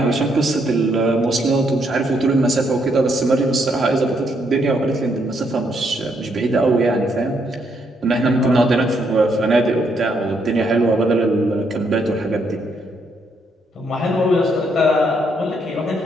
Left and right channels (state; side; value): normal; both; correlation 0.74